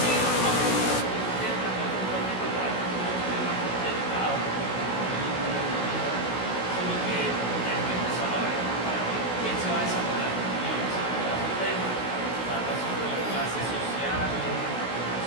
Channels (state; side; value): late; right; 16 ms